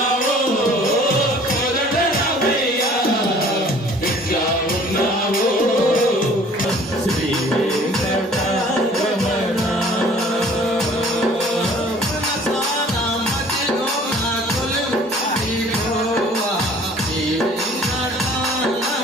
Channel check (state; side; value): normal; both; correlation 0.52